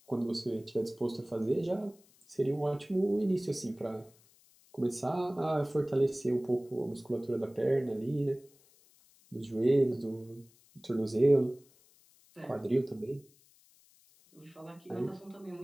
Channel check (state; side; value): noise; left; hiss, 29 dB below the sound